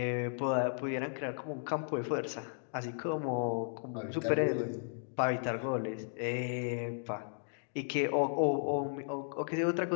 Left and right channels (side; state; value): right; silent; digital silence